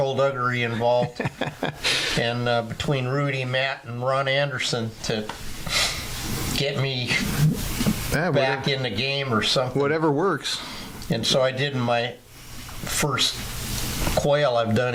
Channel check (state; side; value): identical; both; correlation 1.00